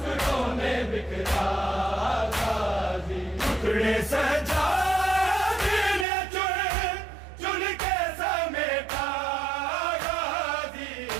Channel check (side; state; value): left; drops out; at 6.1 s